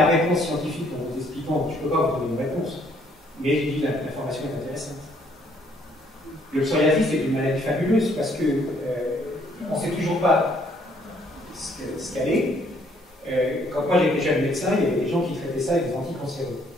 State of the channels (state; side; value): normal; both; correlation 0.66